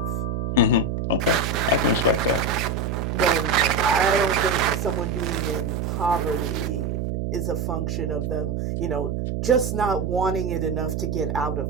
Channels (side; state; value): right; noise; hum, 2 dB below the sound